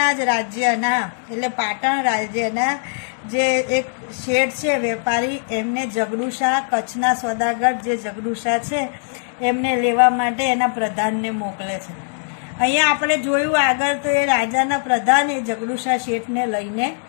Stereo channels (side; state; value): right; silent; digital silence